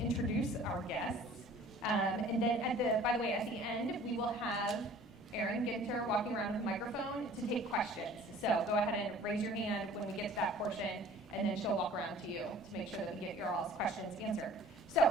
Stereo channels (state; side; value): normal; both; correlation 0.49